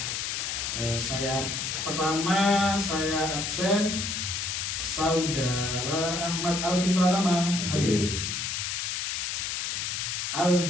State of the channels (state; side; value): noise; left; hiss, 2 dB below the sound